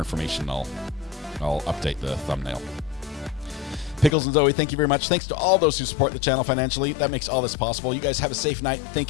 I'll update the thumbnail. Pickles and Zoe, thank you very much. Thanks to all those who support the channel financially. That makes all this possible. You guys have a safe night.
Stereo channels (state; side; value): drops out; right; at 4.1 s